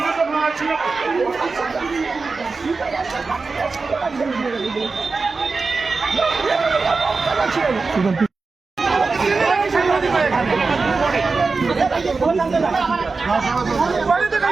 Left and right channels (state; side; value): quieter; left; 4.2 dB